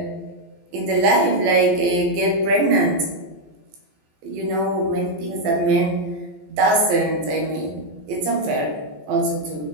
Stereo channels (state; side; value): late; left; 14 ms